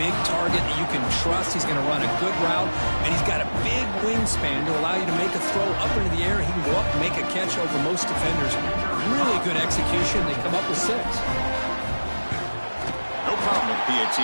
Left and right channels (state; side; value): inverted; both; correlation -1.00